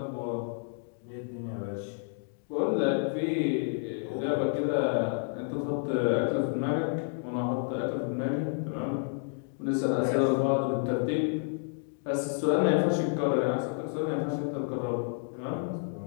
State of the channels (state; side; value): silent; right; 58 dB below the other